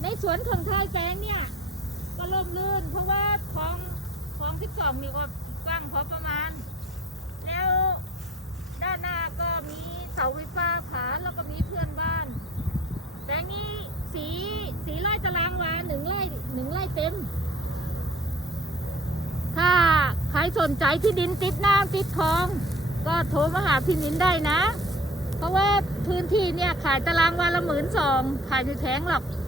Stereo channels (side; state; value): both; normal; correlation 0.48